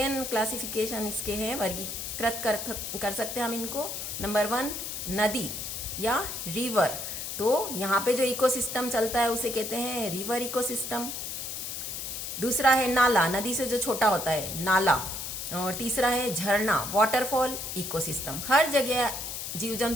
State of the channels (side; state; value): left; noise; hiss, 5 dB below the sound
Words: क्लासिफिकेशन इसके हैं, वर्गीकृत कर सकते हैं हम इनको। नंबर 1 नदी या रिवर, तो यहाँ पे जो इकोसिस्टम चलता है उसे कहते हैं रिवर इकोसिस्टम। दूसरा है नाला, नदी से जो छोटा होता है नाला। और तीसरा है झरना, वाटरफॉल इकोसिस्टम। हर जगह जीव